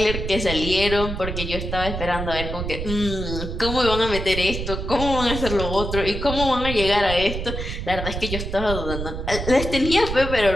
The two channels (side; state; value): right; noise; rumble, 5 dB below the sound